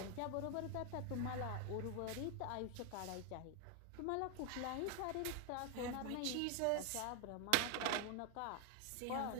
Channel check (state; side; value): different; both; correlation 0.01